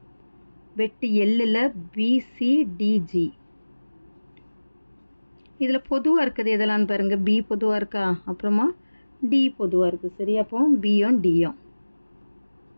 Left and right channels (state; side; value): inverted; both; correlation -1.00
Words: வெட்டு எல்லில் பிசிடிஜி. இதில் பொதுவாக இருக்குது எதெல்லாம் பாருங்கள். பி பொதுவாக இருக்கா, அப்புறமா டி பொதுவாக இருக்குது. சரி, அப்போ பியும் டியும்.